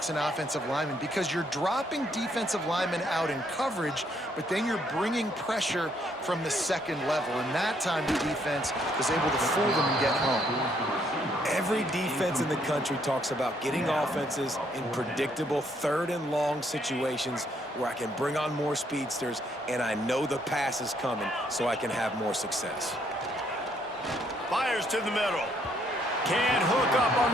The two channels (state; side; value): normal; both; correlation 0.70